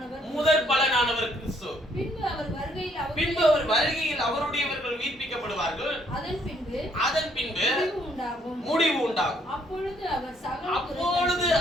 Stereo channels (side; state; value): both; normal; correlation 0.68